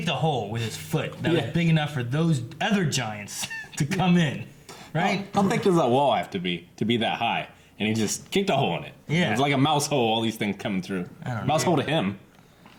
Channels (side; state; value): both; identical; correlation 1.00